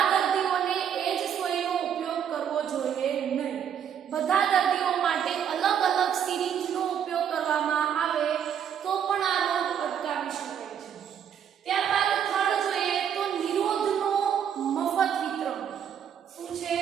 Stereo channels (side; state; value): left; quieter; 8.6 dB